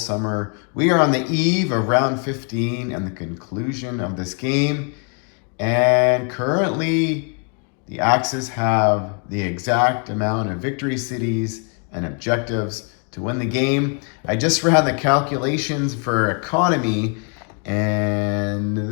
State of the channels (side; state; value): right; quieter; 38.4 dB